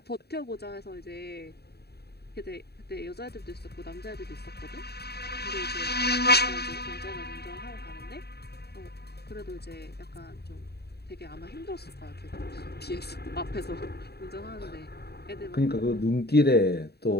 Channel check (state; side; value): late; right; 0.47 ms